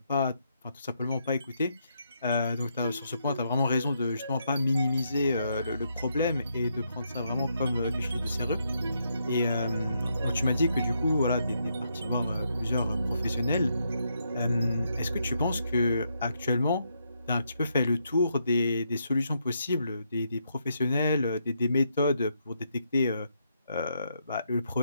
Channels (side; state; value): both; inverted; correlation -0.78